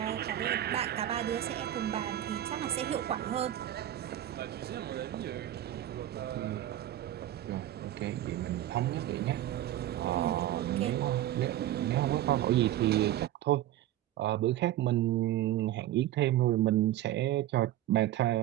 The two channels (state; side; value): quieter; left; 13.1 dB